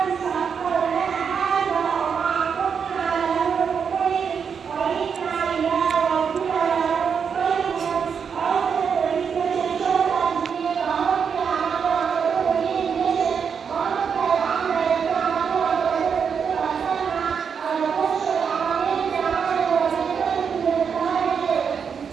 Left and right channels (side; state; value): left; quieter; 6.6 dB